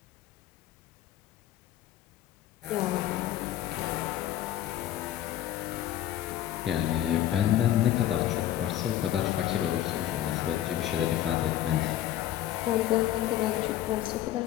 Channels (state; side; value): quieter; right; 12.6 dB